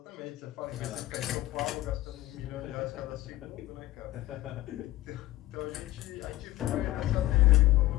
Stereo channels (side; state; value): right; quieter; 16.5 dB